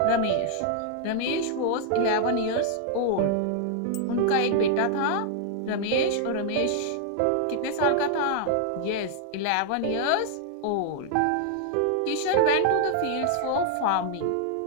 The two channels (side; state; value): both; different; correlation 0.00